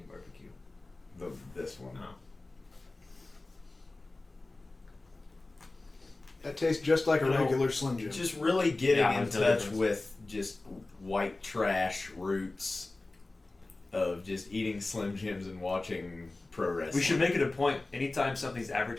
barbecue? This one. No. That tastes just like a regular Slim Jim. Just really getting Yeah, in there's no touch difference. with just white trash roots of just eating Slim Jims and watching pro wrestling. We should make it a point. Anytime something's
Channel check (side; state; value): right; quieter; 3.1 dB